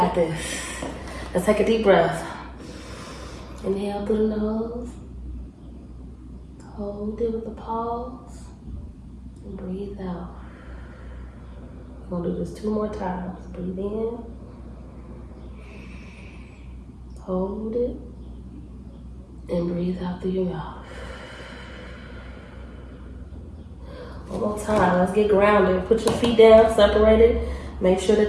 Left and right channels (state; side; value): identical; both; correlation 1.00